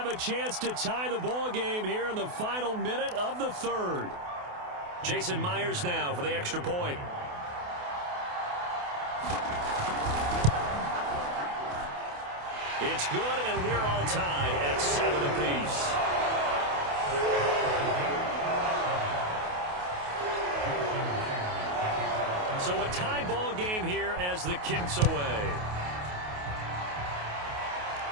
a chance to tie the ball game here in the final minute of the third. Jason Myers now for the extra point. It's good, and we're all tied at 7 apiece. So a tie ball game here as the kick's away.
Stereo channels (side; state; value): left; late; 28 ms